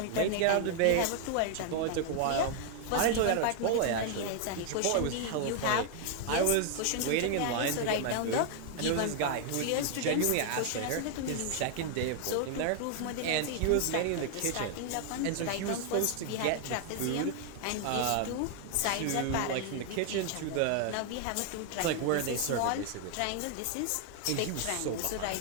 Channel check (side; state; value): both; different; correlation 0.00